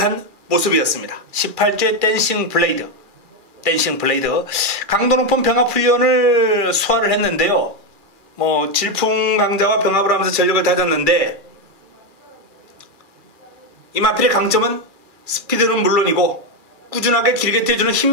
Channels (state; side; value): late; left; 2.4 ms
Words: 모습이었습니다. 18조의 댄싱 블레이드. 댄싱 블레이드. 강도 높은 병합 훈련을 소화를 했는데요. 질풍 강자와 병합을 하면서 전력을 다졌는데, 이 마필의 강점은 스피드는 물론이고 꾸준하게 길게 뛰어주는